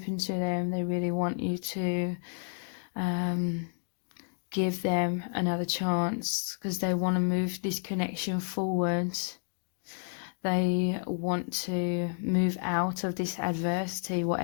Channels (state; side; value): silent; right; 57 dB below the other